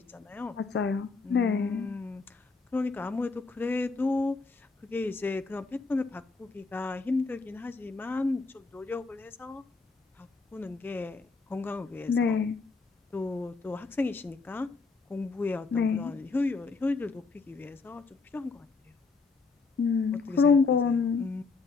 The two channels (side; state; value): right; quieter; 4.2 dB